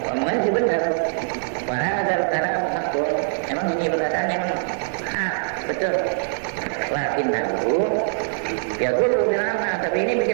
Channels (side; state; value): left; silent; digital silence